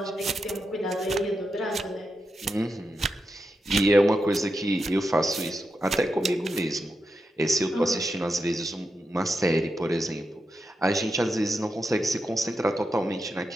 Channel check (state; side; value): normal; both; correlation 0.87